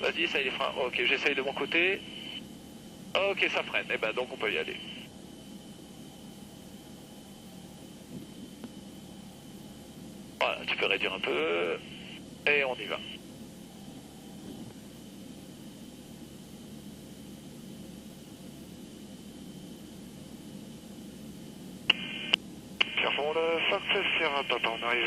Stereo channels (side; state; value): both; identical; correlation 1.00